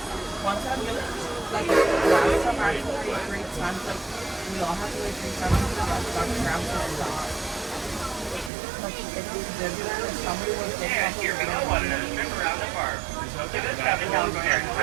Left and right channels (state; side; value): drops out; left; at 8.5 s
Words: One time, like last time I actually wait 3 times, like we all have to wait 3 times to get our tram to stop. Like if we Disneyland and somebody was taking off Here we go, one another trip around the park. This traffic Calico Airport